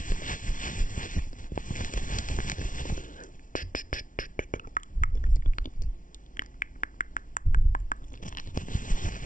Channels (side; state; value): right; late; 0.38 ms